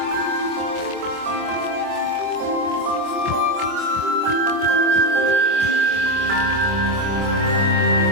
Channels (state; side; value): late; left; 24 ms